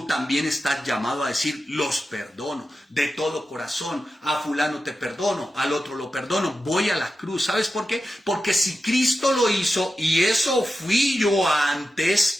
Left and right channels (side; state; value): both; normal; correlation 0.91